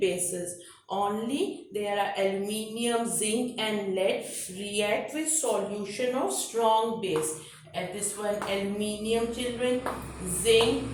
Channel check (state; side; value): identical; both; correlation 1.00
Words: Only there are aluminium, zinc and lead react with solution of strong base. And this one aluminium, children, zinc